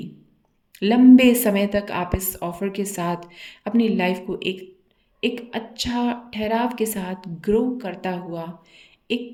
लंबे समय तक आप इस ऑफ़र के साथ अपनी लाइफ को एक एक अच्छा ठहराव के साथ ग्रो करता हुआ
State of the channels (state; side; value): identical; both; correlation 1.00